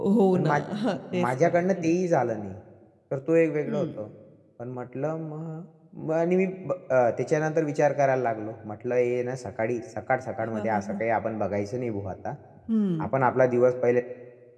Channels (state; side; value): identical; both; correlation 1.00